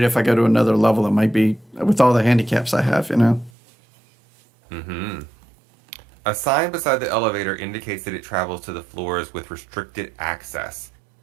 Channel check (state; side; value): drops out; left; at 3.5 s